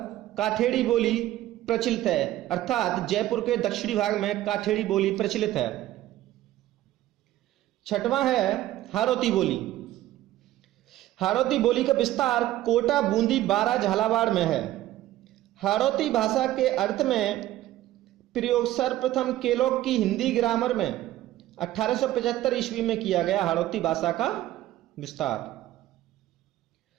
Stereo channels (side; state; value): left; quieter; 14.6 dB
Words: काठेड़ी बोली प्रचलित है, अर्थात जयपुर के दक्षिणी भाग में काठेड़ी बोली प्रचलित है। छठवां है हाड़ौती बोली। हाड़ौती बोली का विस्तार कोटा, बूंदी, बारा, झालावाड़ में है। हाड़ौती भाषा के अर्थ में प्रयोग सर्वप्रथम केलॉग की हिंदी ग्रामर में 1875 ईस्वी में किया गया। हाड़ौती भाषा का विस्तार।